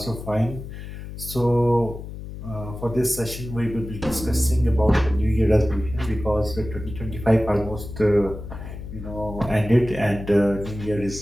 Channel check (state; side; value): noise; left; hum, 10 dB below the sound